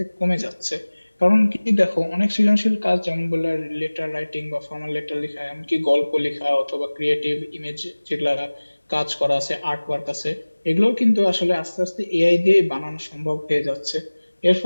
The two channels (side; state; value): both; inverted; correlation -1.00